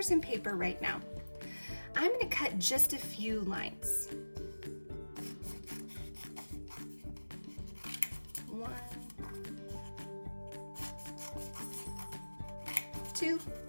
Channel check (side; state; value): both; inverted; correlation -1.00